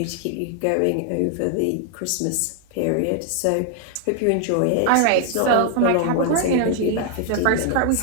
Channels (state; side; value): different; both; correlation 0.00